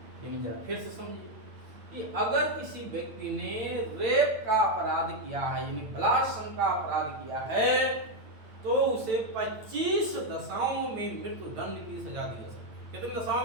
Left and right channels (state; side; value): late; left; 8.9 ms